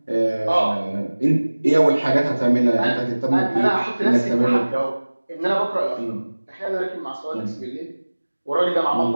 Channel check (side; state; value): both; inverted; correlation -1.00